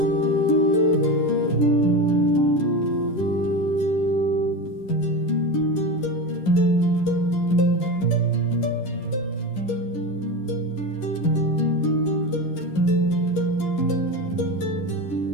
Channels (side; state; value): right; late; 11 ms